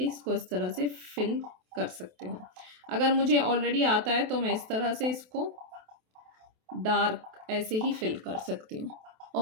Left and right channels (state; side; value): late; left; 28 ms